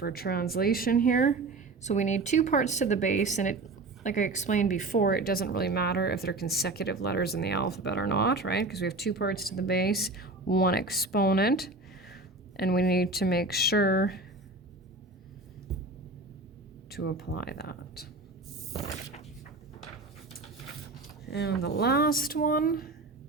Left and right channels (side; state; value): left; quieter; 3.2 dB